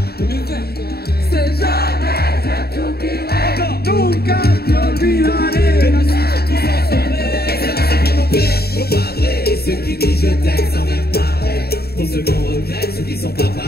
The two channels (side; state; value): right; late; 0.46 ms